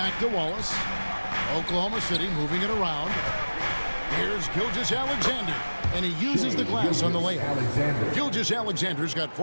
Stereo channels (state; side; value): inverted; both; correlation -1.00